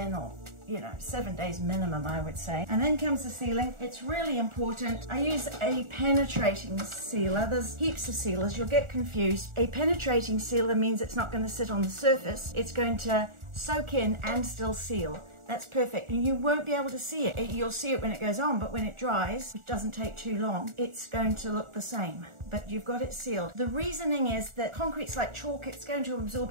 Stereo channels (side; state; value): left; late; 1.4 ms